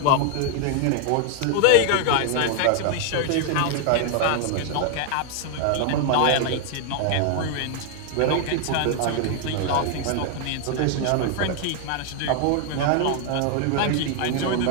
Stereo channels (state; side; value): different; both; correlation 0.00